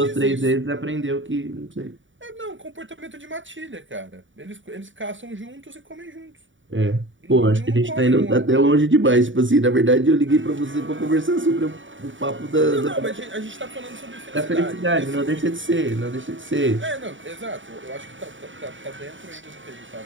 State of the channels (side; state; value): left; late; 0.56 ms